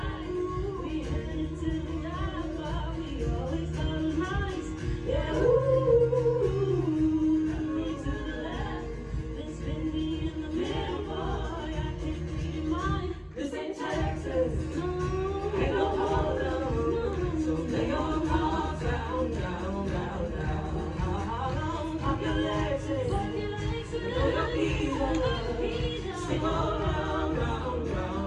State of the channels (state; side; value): identical; both; correlation 1.00